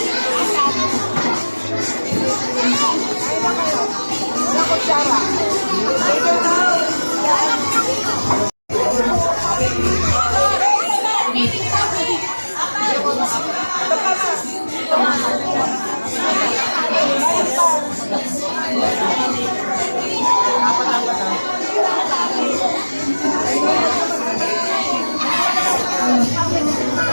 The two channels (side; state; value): both; inverted; correlation -1.00